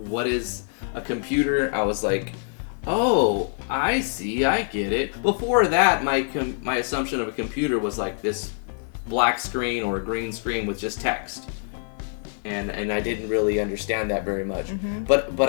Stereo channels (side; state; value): right; silent; 56 dB below the other